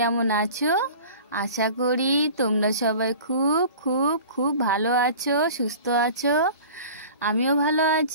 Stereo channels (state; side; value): inverted; both; correlation -0.41